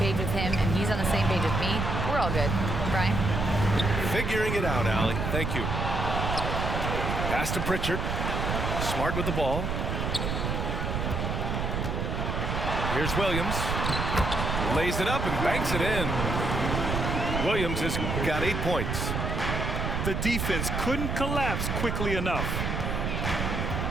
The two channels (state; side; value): noise; right; rumble, 1 dB below the sound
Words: with him and he's on the same page with me, we're all good." Brian? Figuring it out, Allie. Thank you. Pass to Pritchard. Smart with the ball. Here's Williams. Lays it up and banks it in. Williams has got 8 points. The defense couldn't collapse quickly enough.